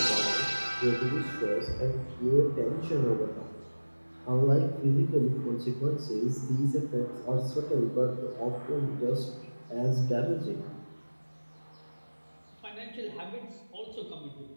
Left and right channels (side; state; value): both; inverted; correlation -1.00